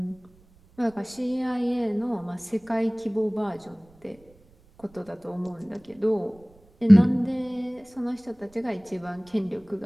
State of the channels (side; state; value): right; noise; rumble, 29 dB below the sound